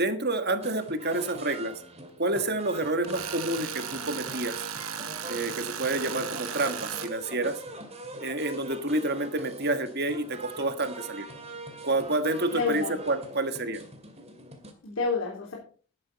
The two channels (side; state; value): both; normal; correlation -0.03